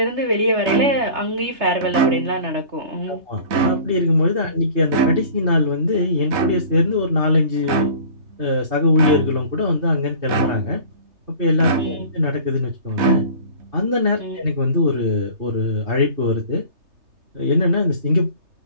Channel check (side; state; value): left; late; 3.3 ms